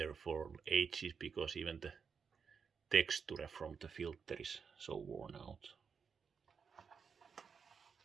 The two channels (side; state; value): left; quieter; 6.1 dB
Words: for ages because even the texture from the filter is so worn out.